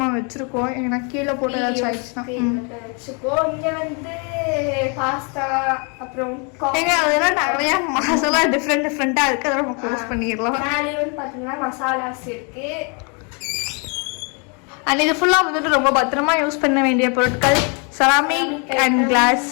வச்சிருக்கோம். ஏன்னா கீழே போட்டு ஏதாச்சும் ஆயிடுச்சுன்னா வச்சுக்கோம். இங்க வந்து பாஸ்தா அப்புறம் அதெல்லாம் நிறைய மசாலா டிஃப்ரெண்டா இருக்கு. அதெல்லாம் நம்ம க்ளோஸ் பண்ணிடலாம். மேலே வந்து பாத்தீங்கன்னா மசாலாஸ் இருக்கு. அண்ட் இது ஃபுல்லா வந்துட்டு ரொம்ப பத்திரமா யூஸ் பண்ண வேண்டிய பொருட்கள் ceramic and class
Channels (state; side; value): quieter; right; 35.4 dB